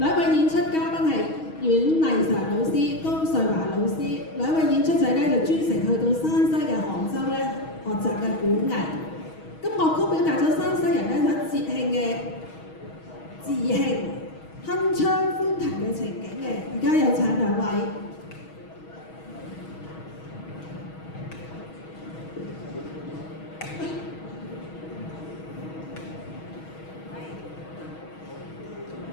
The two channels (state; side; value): late; right; 6.3 ms